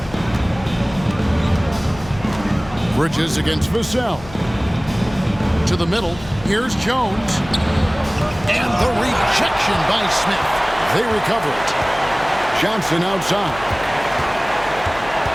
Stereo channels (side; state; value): left; noise; hum, 17 dB below the sound